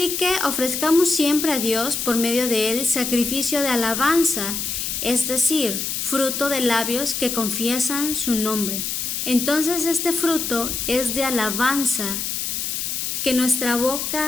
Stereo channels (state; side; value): noise; left; hiss, 2 dB below the sound